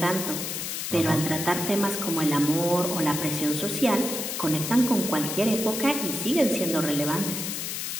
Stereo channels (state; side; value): noise; left; hiss, 4 dB below the sound